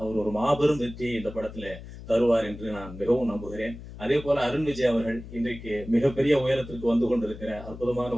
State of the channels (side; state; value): left; noise; hum, 14 dB below the sound